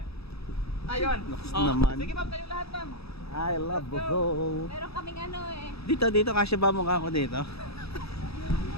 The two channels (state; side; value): late; right; 0.78 ms